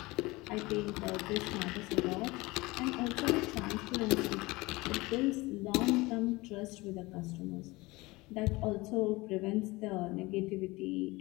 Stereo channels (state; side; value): quieter; right; 22.1 dB